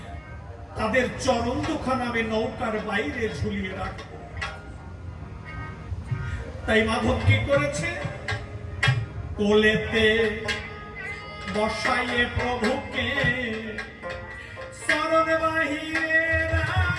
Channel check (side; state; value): both; identical; correlation 1.00